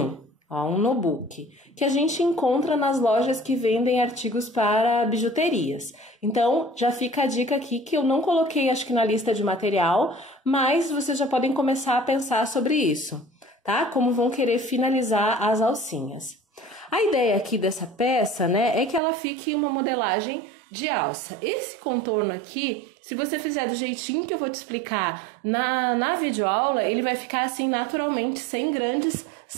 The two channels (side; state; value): left; drops out; at 19.0 s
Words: ó, um nobuque, que a gente encontra nas lojas que vendem artigos para bijuterias. Então, já fica a dica aqui que eu não coloquei, acho que na lista de material, mas vocês já podem começar a pensar sobre isso, tá? Como vão querer finalizar as alcinhas. A ideia aqui dessa peça, né, é que ela fique uma modelagem de alça. Esse contorno aqui, se você fizer do jeitinho que eu vou te explicar na videoaula, ele vai ficar assim naturalmente, sem grandes